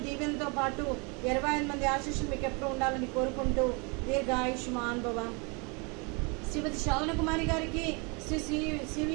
దీవెనతో పాటు 25 మంది ఆశీస్సులు మీకు ఎప్పుడు ఉండాలని కోరుకుంటూ దీర్ఘ ఆయుష్మాన్ భవ. శ్రీమతి శ్రావణ కుమారి గారికి, శ్రీ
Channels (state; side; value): quieter; left; 31.4 dB